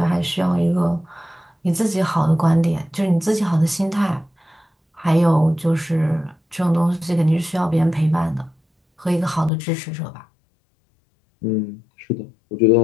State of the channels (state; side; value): drops out; right; at 9.5 s